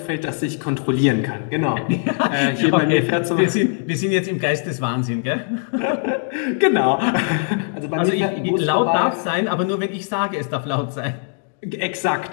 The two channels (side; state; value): right; silent; 61 dB below the other